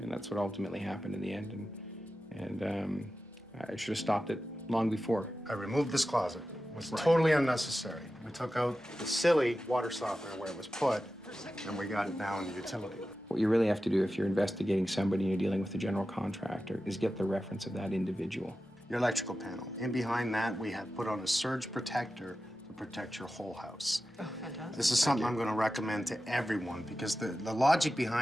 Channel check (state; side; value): normal; both; correlation 0.93